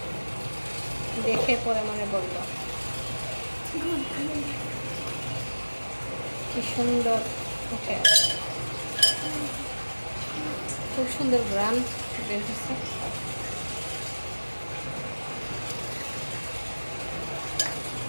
দেখে পরে মনে পড়লো। কি সুন্দর উঠে আছে, খুব সুন্দর গ্রাম বের হচ্ছে।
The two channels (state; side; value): inverted; both; correlation -1.00